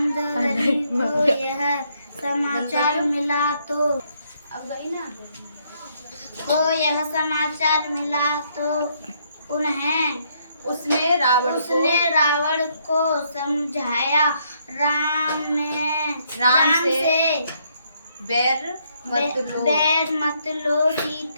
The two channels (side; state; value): both; inverted; correlation -0.71